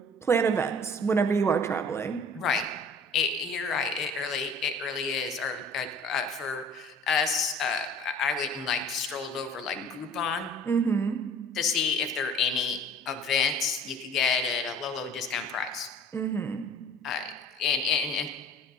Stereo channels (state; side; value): normal; both; correlation 0.48